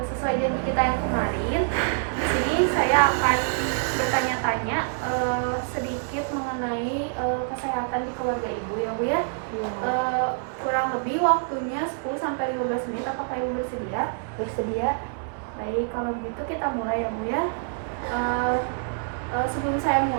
sesuai janji kita yang kemarin, di sini saya akan bertanya-tanya sedikit mengenai kesehatan di keluarga Ibu ya Bu ya. Iya. Kurang lebih waktunya 10-15 menit, apakah Ibu bersedia? Bersedia. Baik, kalau begitu kita mulai ya Bu ya. Sebelum saya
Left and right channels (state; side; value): silent; left; 61 dB below the other